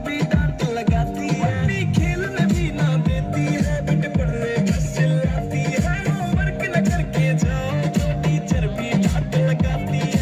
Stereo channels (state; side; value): identical; both; correlation 1.00